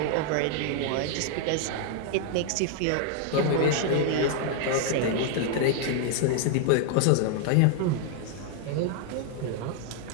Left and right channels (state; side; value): different; both; correlation 0.00